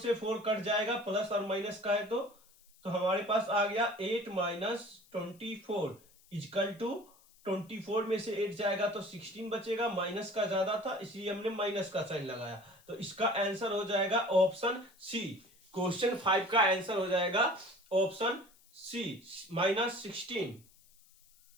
4 कट जाएगा, प्लस और माइनस का है तो हमारे पास आ गया 8 - 24 इजकल टू 24 में से 8 जाएगा तो 16 बचेगा, माइनस का ज्यादा था इसलिए हमने माइनस का साइन लगाया, तो इसका आंसर हो जाएगा ऑप्शन सी। क्वेश्चन 5 का आंसर हो जाएगा ऑप्शन सी -16।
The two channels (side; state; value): left; noise; hiss, 28 dB below the sound